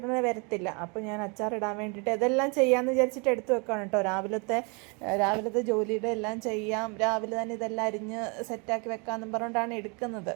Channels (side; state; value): left; quieter; 32.8 dB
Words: വരത്തില്ല. അപ്പോൾ ഞാൻ അച്ചാറിടാൻ വേണ്ടിയിട്ട് ഇതെല്ലാം ചെയ്യാമെന്ന് വിചാരിച്ചിട്ട് എടുത്തു വെക്കുകയാണ് കേട്ടോ. രാവിലത്തെ ജോലിയുടെ എല്ലാം ചെയ്യാം, രാവിലെ തന്നെ ഇതെല്ലാം അരിഞ്ഞ് സെറ്റാക്കി വെക്കാമെന്നും പറഞ്ഞുകൊണ്ടാണ് എടുക്കുന്നത്.